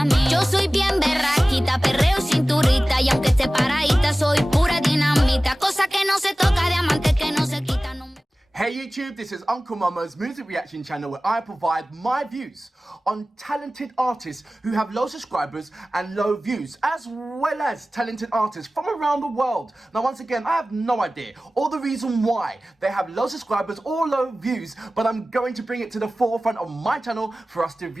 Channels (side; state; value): both; normal; correlation 0.97